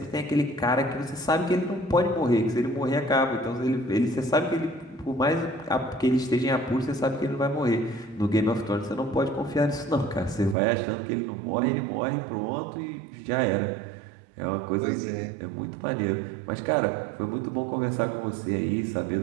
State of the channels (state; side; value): drops out; left; at 10.6 s